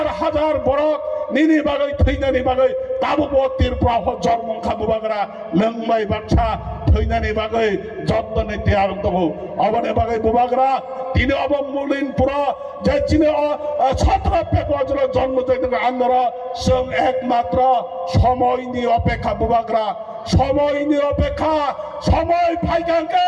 borok nini bagai thainani bagai काबो तिरफ्रा जर्मंखा बुबाग्रा नंबाय बाथ्रा थैनानै बागै जत्तनै तैयार दङ अबने बागै बुबाग्रा তিনি অবমূল্যহীন পুরো যে চিনে 17 ফেব্রুয়ারি জন্ম জয়ন্তী আন্দোলন সং একমাত্র সময় নিয়ে অপেক্ষা বুবাগ্রা সময় নিয়ে অপেক্ষা সময়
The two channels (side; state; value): both; identical; correlation 1.00